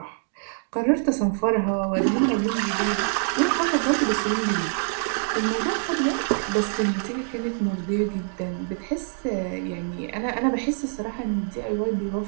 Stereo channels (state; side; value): silent; left; 58 dB below the other